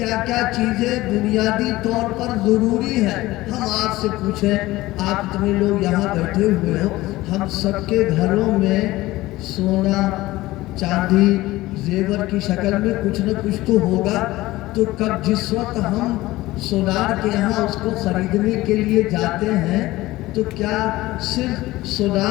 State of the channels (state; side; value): quieter; right; 18.0 dB